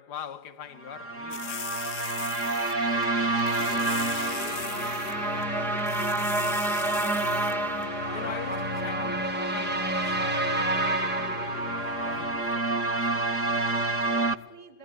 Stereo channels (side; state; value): right; late; 4.9 ms